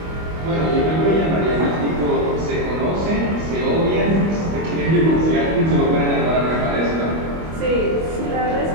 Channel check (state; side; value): late; left; 25 ms